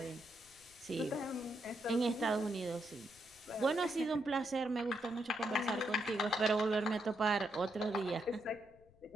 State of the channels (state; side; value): noise; left; rumble, 27 dB below the sound